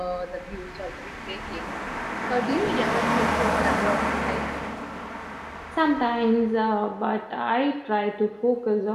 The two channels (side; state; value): both; identical; correlation 1.00